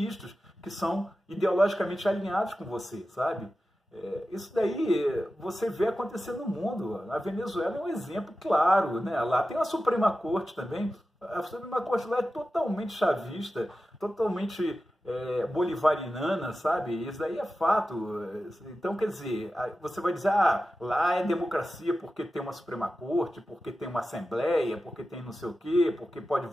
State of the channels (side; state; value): both; normal; correlation 0.93